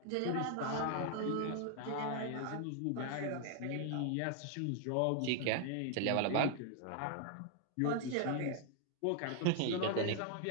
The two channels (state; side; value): different; both; correlation 0.00